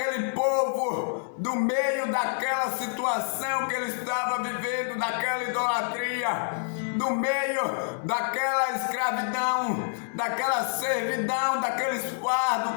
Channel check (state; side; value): silent; right; digital silence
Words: povo do meio daquela situação que ele estava vivendo, daquela idolatria, do meio daquela escravidão, daquela servidão, daqueles fardos